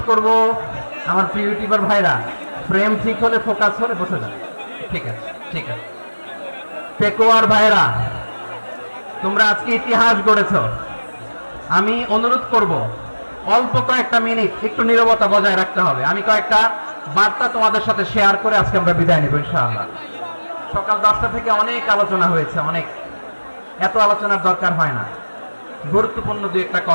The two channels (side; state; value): both; inverted; correlation -1.00